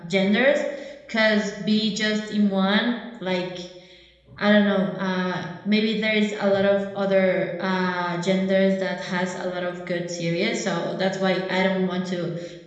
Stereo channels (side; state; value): both; identical; correlation 1.00